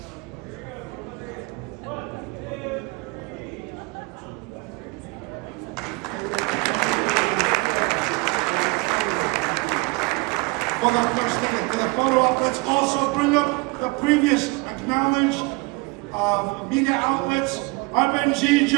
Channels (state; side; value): quieter; left; 26.9 dB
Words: for the photo op. Let's also bring up the previous acknowledged media outlets.